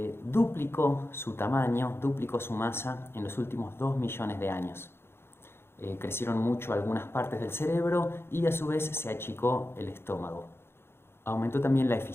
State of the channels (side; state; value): right; late; 0.12 ms